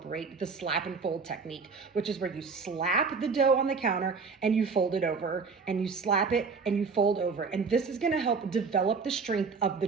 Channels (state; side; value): quieter; left; 5.0 dB